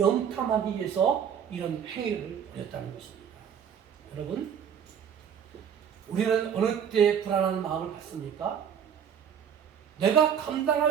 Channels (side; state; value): left; quieter; 8.1 dB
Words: 위해서 이런 행위를 벌였다는 것입니다. 여러분, 우리는 어느 때 불안한 마음을 갖습니까? 내가